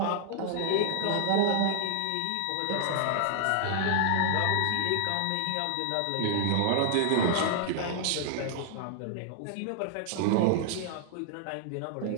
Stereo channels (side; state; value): both; different; correlation 0.00